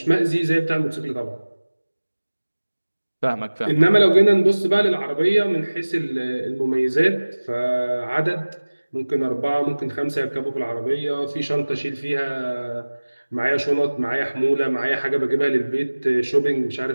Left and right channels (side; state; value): both; inverted; correlation -1.00